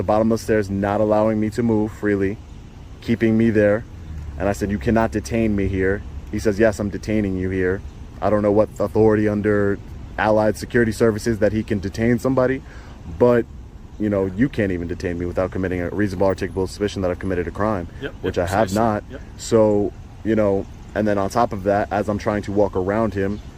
bottom of the stairs, not allowing me to move freely, keeping me there. And I said, "You cannot detain me here." He says, "Yes, I'm detaining you here." I don't know what authority under Allied Security Services that he can detain somebody, but you can't even detain me without committing a reasonable articulable suspicion that I've committed a crime, which I have not. So, and then on top of that, as I'm trying to walk around him,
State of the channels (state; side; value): identical; both; correlation 1.00